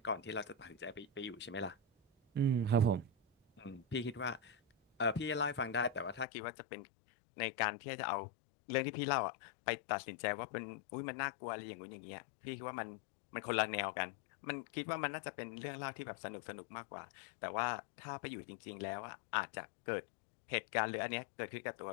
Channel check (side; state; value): right; drops out; at 6.2 s